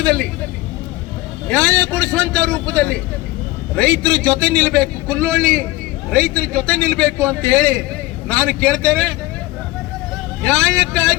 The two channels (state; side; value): quieter; right; 19.3 dB